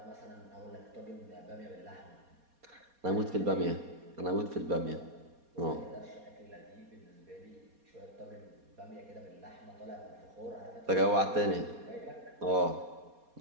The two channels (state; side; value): late; left; 4.2 ms